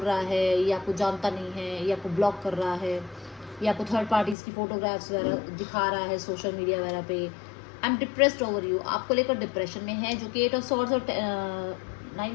रहा है, ये आपको जानता नहीं है, ये आपको ब्लॉक कर रहा है, ये आपको थर्ड पार्टीज़ की फोटोग्राफ्स वगैरह दिखा रहा है सोशल मीडिया वगैरह पे। I am depressed over you, आपको लेकर डिप्रेशन में है, जो कि 8 ऑफ सॉर्ड्स और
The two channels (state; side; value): drops out; right; at 4.4 s